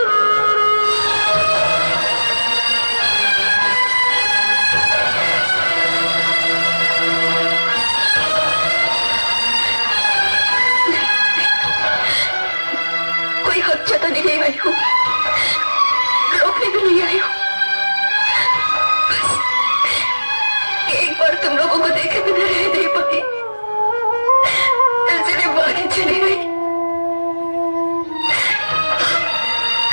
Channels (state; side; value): inverted; both; correlation -1.00